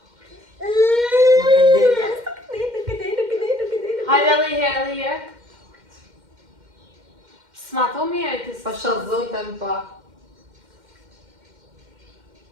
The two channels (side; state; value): left; late; 2.1 ms